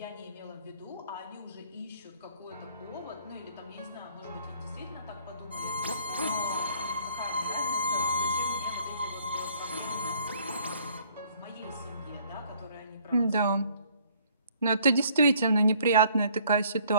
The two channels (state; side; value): inverted; both; correlation -0.60